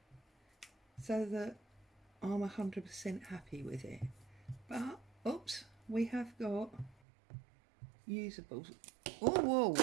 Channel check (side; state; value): left; drops out; at 7.0 s